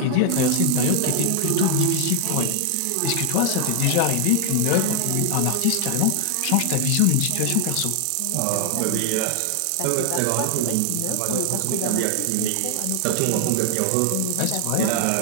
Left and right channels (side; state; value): both; different; correlation 0.01